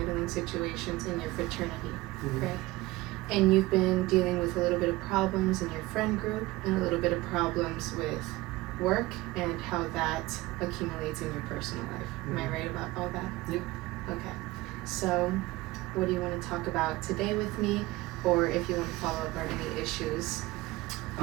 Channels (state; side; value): quieter; left; 19.8 dB